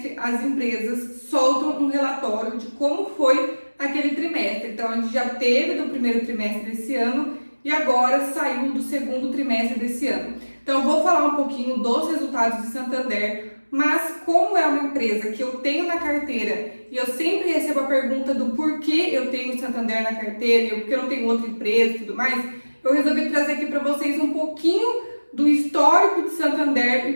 as empresas soltam um relatório de como foi aquele trimestre. Então a gente já teve do primeiro trimestre desse ano e agora saiu do segundo trimestre desse ano. Então eu vou falar um pouquinho dos resultados de Santander. Mas como é uma empresa que eu tenho na carteira e eu sempre recebo a pergunta do porquê eu tenho Santander na carteira e porque eu não tenho outra empresa e tudo mais, eu resolvi trazer aqui para vocês um pouquinho do histórico de Santander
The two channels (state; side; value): inverted; both; correlation -1.00